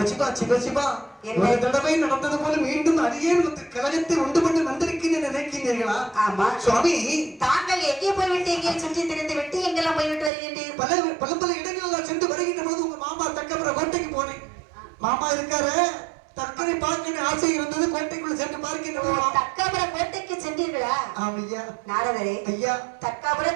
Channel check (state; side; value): drops out; left; at 10.3 s